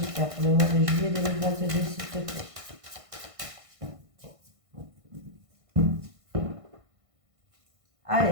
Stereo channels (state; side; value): late; left; 1.5 ms